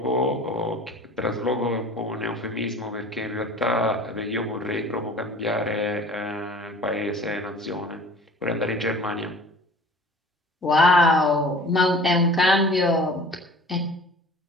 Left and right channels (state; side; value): normal; both; correlation 0.45